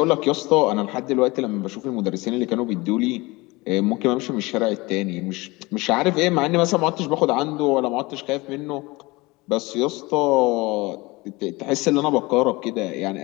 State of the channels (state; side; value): quieter; right; 22.8 dB